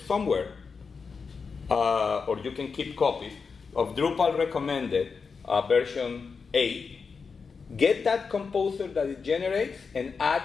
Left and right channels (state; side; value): quieter; right; 5.2 dB